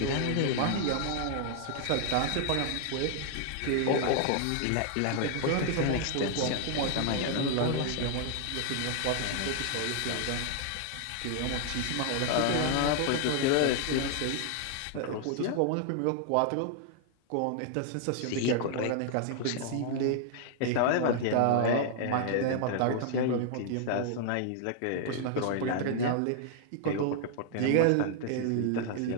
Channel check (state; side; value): different; both; correlation 0.00